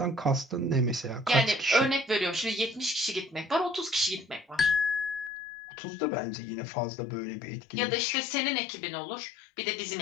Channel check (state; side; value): drops out; right; at 5.3 s